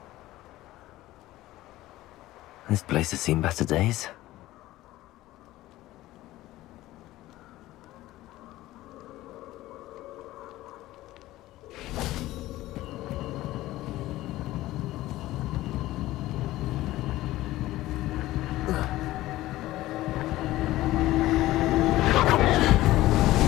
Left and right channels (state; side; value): quieter; right; 16.4 dB